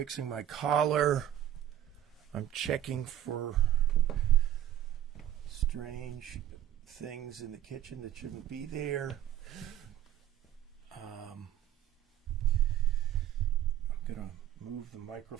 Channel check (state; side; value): quieter; left; 11.7 dB